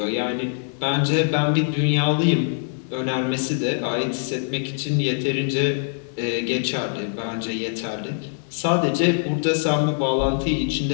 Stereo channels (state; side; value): silent; right; 63 dB below the other